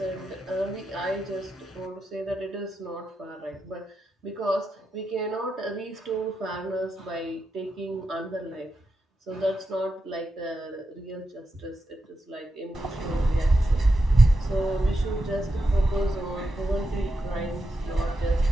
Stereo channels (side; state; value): both; normal; correlation 0.87